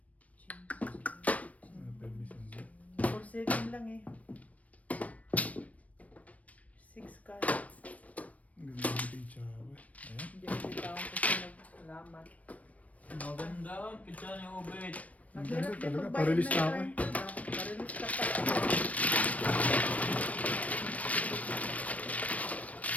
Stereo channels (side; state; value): right; late; 0.068 ms